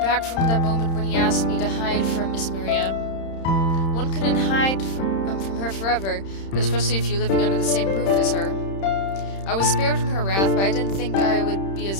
from that moment when he asked me to hide from Miss Maria. One couldn't hide from her forever, especially if you're living under the same roof as her. I was spared from her wrath, but I didn't think I would be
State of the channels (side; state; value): right; late; 31 ms